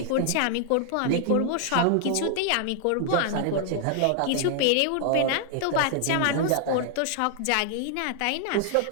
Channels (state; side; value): different; both; correlation 0.00